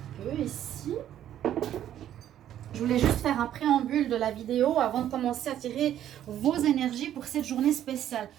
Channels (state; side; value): quieter; left; 11.2 dB